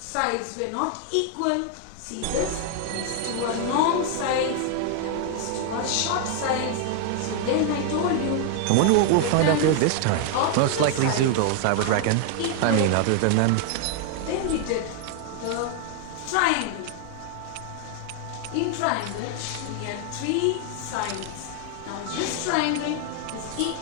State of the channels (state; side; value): different; both; correlation 0.00